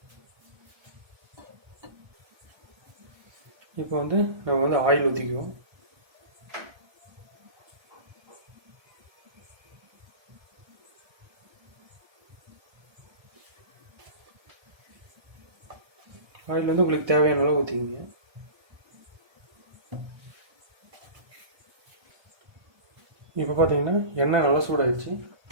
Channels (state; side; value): late; left; 1.3 ms